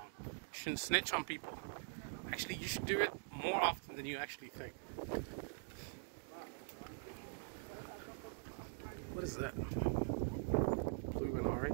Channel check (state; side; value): silent; left; digital silence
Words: You shouldn't snitch on people. Actually, you should do it more often than you actually think. What is that? Blue and